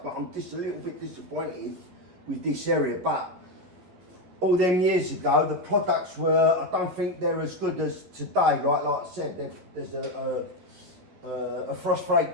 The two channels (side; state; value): left; late; 11 ms